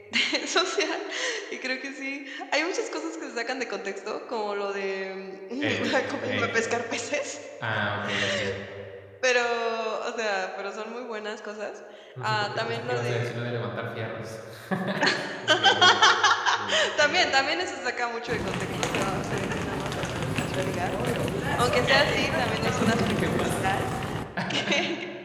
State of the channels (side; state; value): both; identical; correlation 1.00